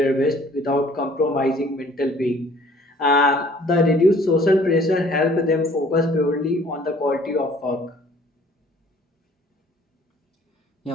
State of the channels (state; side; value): normal; both; correlation 0.55